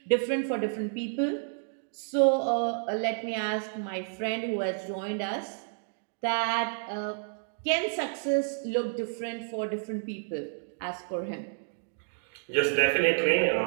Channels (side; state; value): left; silent; digital silence